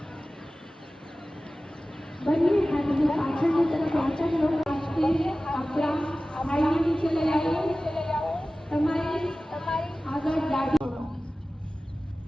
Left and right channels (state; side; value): normal; both; correlation 0.96